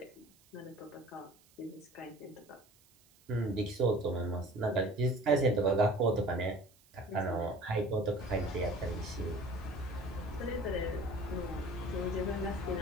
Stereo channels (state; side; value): noise; right; hiss, 29 dB below the sound